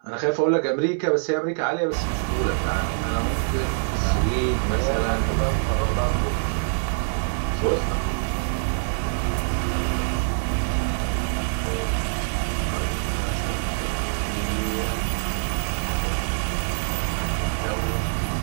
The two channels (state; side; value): silent; left; 62 dB below the other